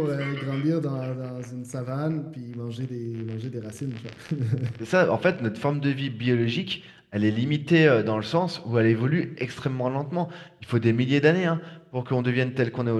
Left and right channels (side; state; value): both; identical; correlation 1.00